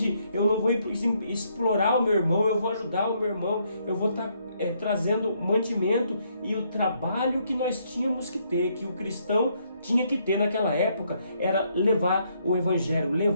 eu não vou explorar o meu irmão, eu vou ajudar o meu irmão, eu vou estar trazendo mantimento, e o trabalho que nós tínhamos que ter, que o cristão tinha que ter naquela época, era levar o Evangelho,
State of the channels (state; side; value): inverted; both; correlation -0.72